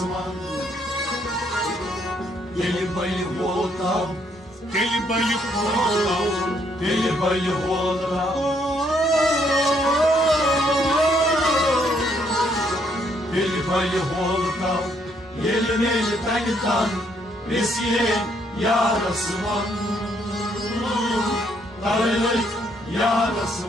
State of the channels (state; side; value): normal; both; correlation 0.70